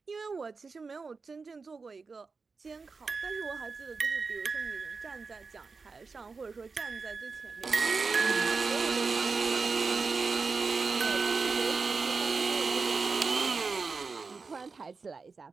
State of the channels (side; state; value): left; quieter; 4.5 dB